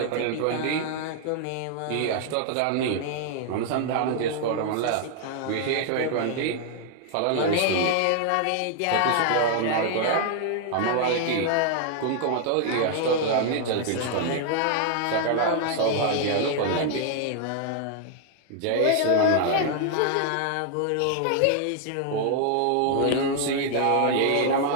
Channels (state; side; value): different; both; correlation 0.00